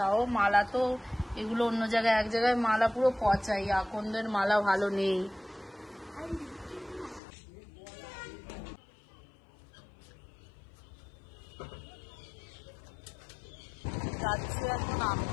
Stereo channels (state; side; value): drops out; right; at 7.2 s